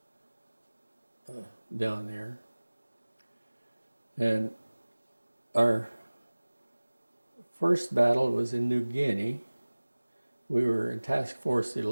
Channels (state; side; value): inverted; both; correlation -1.00